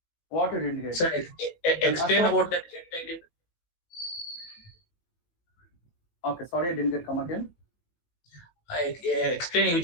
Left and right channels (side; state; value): right; late; 18 ms